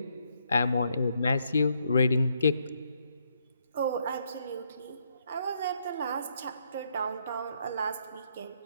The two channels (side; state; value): both; inverted; correlation -0.74